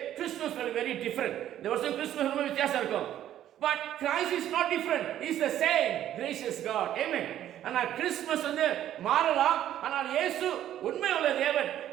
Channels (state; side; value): quieter; left; 11.8 dB